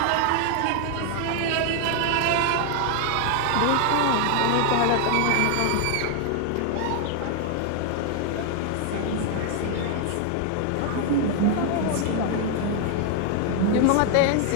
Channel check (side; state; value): both; different; correlation 0.00